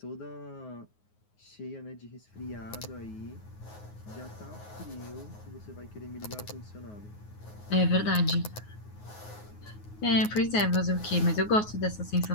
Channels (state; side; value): late; right; 9.5 ms